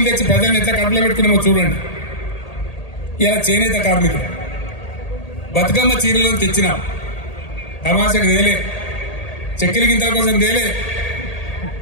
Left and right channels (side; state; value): right; late; 1.8 ms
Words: తెచ్చి ప్రజలను ఎట్లా కడుపులో పెట్టుకున్నామో చూడండి. ఇలా చేనేత కార్మికులు బతుకమ్మ చీరలను తెచ్చినాం, తమాషకు తేలే, చక్కెర గింతల కోసం తేలే.